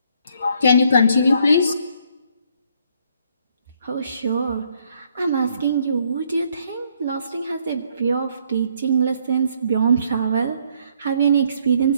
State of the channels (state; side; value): inverted; both; correlation -0.68